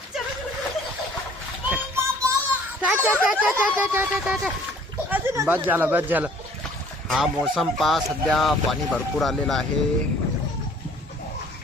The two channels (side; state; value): both; normal; correlation 0.55